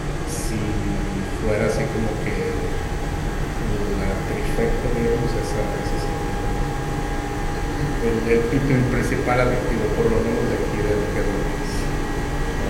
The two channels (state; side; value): identical; both; correlation 1.00